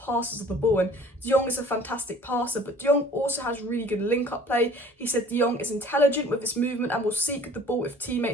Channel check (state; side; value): normal; both; correlation 0.50